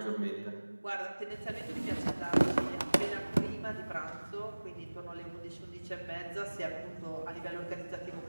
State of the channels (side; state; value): both; inverted; correlation -1.00